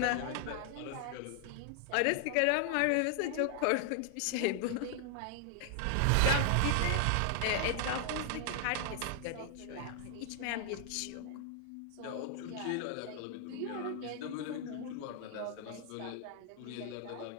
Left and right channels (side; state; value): both; different; correlation 0.00